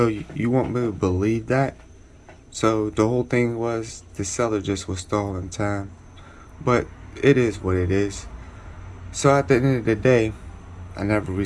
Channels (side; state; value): both; identical; correlation 1.00